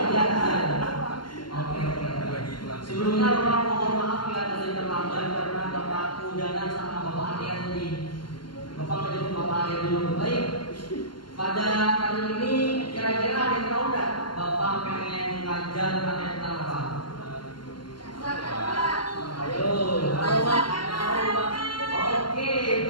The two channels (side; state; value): right; late; 0.71 ms